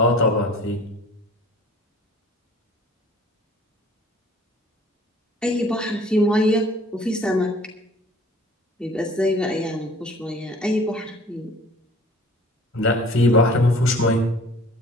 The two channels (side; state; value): both; normal; correlation 0.50